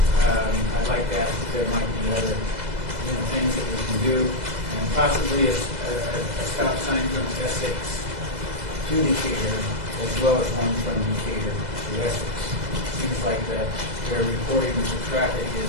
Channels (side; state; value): left; late; 2.0 ms